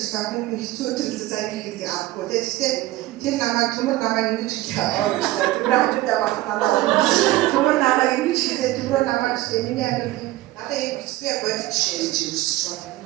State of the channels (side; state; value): left; quieter; 17.0 dB